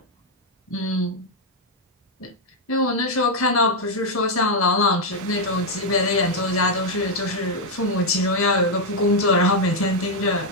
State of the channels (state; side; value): normal; both; correlation 0.00